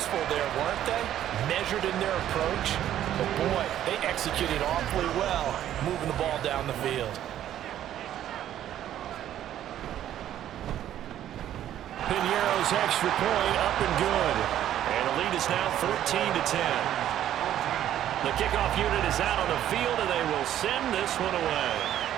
there, weren't they? Measured in their approach. But boy, they executed awfully well, moving the ball down the field. Piñeiro's extra point up and good. And the lead is now 14-10. The kickoff unit is out on the field, and they will send this one away.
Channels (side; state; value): left; quieter; 11.6 dB